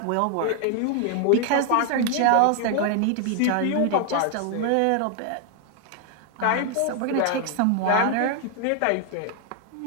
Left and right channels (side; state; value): both; different; correlation 0.00